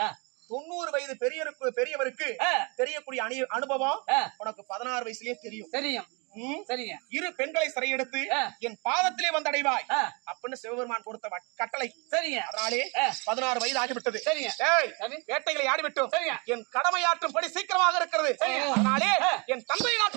ஆ. 90 வயது பெரியவருக்கு ஆ. தெரியக்கூடிய அனுபவம் ஆ. உனக்கு 16 வயசுலயே தெரியும். தெரியும். ம்? சரிங்க. 2 பெண்களை சிறையெடுத்து ஆ. என் பாதத்திலே வந்தடைவாய் ஆ. அப்படின்னு சிவபெருமான் கொடுத்த கட்டளை. சரிங்க. அதனாலே ஆ. 16 வயது ஆகிவிட்டது. சரிங்க. ஏய், சாமி. வேட்டைகளை ஆடிவிட்டோம். சரிங்க. என் கடமையாற்றும்படி சீக்கிரமாக இருக்கிறது. சரிங்க. அதனாலே ஆ. என் தந்தையை நான்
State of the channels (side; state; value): left; quieter; 30.8 dB